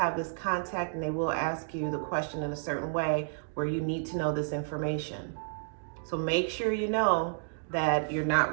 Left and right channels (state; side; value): silent; left; digital silence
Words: this contact, and they will ask you the question in a certain way where you need to know this information. So make sure you know that you're